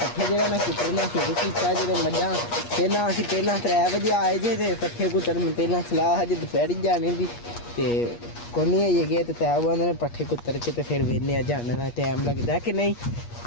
ਜਿਹੜਾ ਨਾ ਕੁੱਟਣਾ ਸ਼ੁਰੂ ਕੀਤਾ। ਜਿਹੜੇ ਮੱਝਾਂ ਪਹਿਲਾਂ 3 ਵਜੇ ਆਏ ਜੇ, ਤੇ ਪੱਠੇ ਕੁੱਟਣ ਪਹਿਲਾਂ ਸਲਾਹ ਹਜੇ ਦੁਪਹਿਰੀ ਜਾਣੇ ਦੀ, ਤੇ ਕੋਨੀ ਆਈਏ ਗਏ ਤੇ ਤੈ ਉਹ ਨੇ ਪੱਠੇ ਕੁੱਤਰ ਕੇ ਤੇ ਫਿਰ ਵੇਨੇ ਆ ਜਾਣ ਦਾ ਟਾਈਮ ਲੱਗਦਾ ਕਿ ਨਹੀਂ।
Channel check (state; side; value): late; right; 8.4 ms